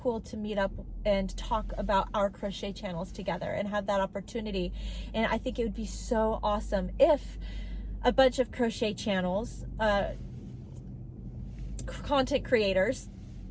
to meet up and talk about our crochet channels together and have that opportunity. And I think it would be so awesome if a bunch of crochet channels, content creators,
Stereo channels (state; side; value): identical; both; correlation 1.00